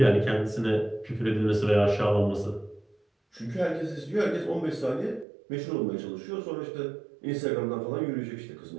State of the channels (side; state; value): left; drops out; at 5.2 s